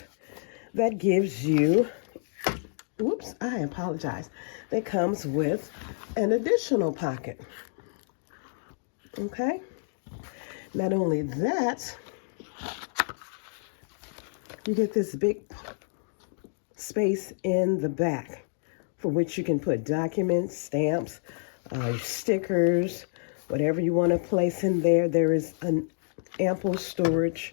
that gives you, whoops, I apologize, that comes with an additional pocket. Okay. Not only that, you get this big space in the back for which you can put documents, stamps, stickers, whatever you want to place in there. There is an ample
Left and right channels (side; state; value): right; silent; digital silence